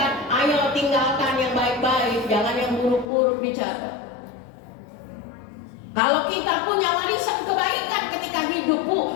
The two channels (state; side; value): drops out; right; at 3.1 s